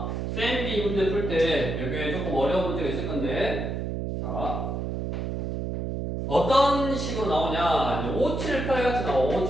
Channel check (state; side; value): noise; right; hum, 3 dB below the sound